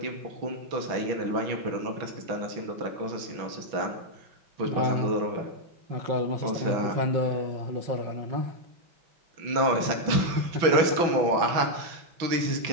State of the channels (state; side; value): late; left; 6.0 ms